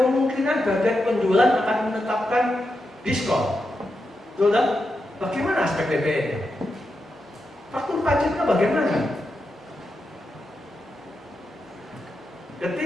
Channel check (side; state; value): both; normal; correlation 0.87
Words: kemungkinan bagian penjualan akan menetapkan diskon. Betul tak? Bagaimana aspek PPN? Faktur pajaknya bagaimana?